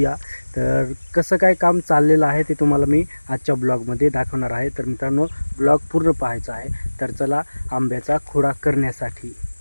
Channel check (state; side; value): inverted; both; correlation -1.00